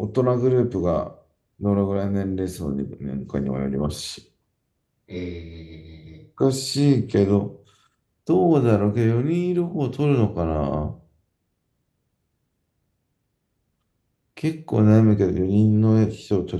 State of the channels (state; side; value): identical; both; correlation 1.00